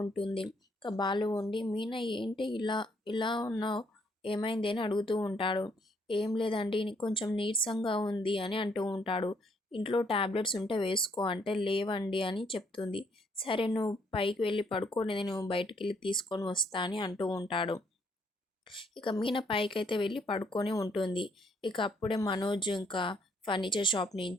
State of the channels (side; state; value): both; normal; correlation 0.69